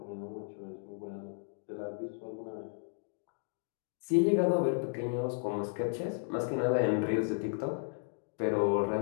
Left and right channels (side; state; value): right; silent; digital silence